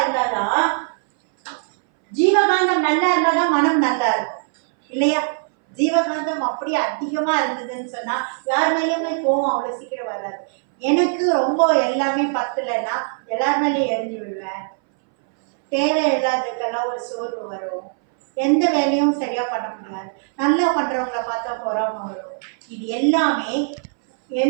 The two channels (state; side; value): silent; left; 62 dB below the other